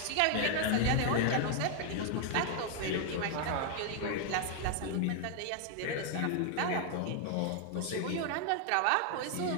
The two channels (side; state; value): both; different; correlation 0.00